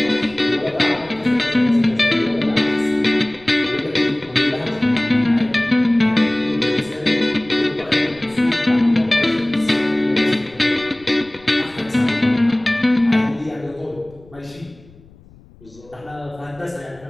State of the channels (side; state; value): left; noise; rumble, 25 dB below the sound